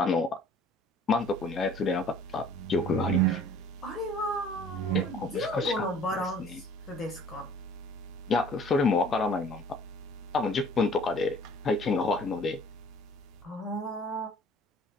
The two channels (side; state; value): both; normal; correlation 0.52